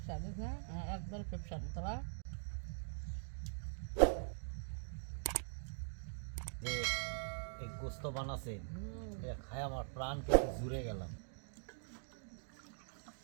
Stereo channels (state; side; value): silent; left; digital silence